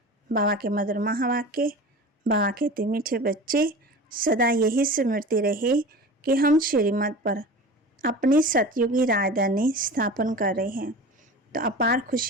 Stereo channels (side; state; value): both; normal; correlation 0.35